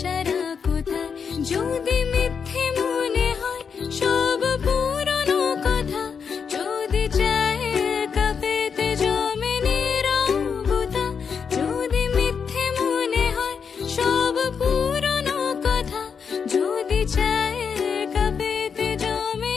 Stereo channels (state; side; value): quieter; right; 6.3 dB